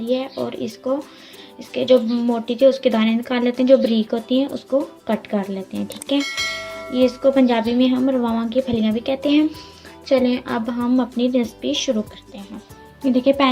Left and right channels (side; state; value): both; identical; correlation 1.00